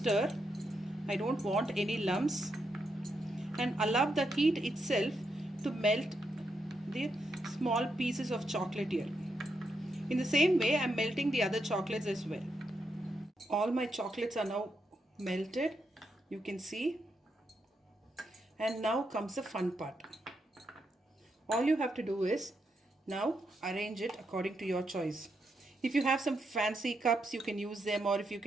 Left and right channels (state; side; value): normal; both; correlation 0.82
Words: I don't want any lumps and allow the heat itself to melt the small pieces of chocolate here. In the same way, I'm melting the other chocolates as well. All my chocolates are now melted, you can see. And now comes the fun part. All you have to do is now arrange it according to your choice. If you have some fancy cups, you can use them, or if you